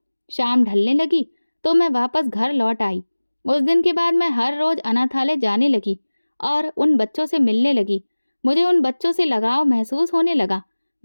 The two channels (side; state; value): both; inverted; correlation -1.00